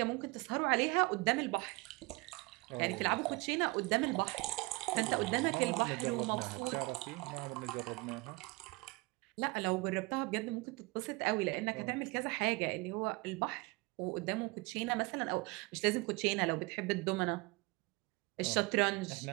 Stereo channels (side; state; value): left; quieter; 25.1 dB